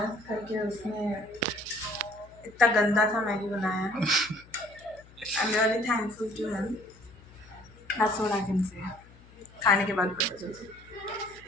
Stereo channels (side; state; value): left; noise; hum, 23 dB below the sound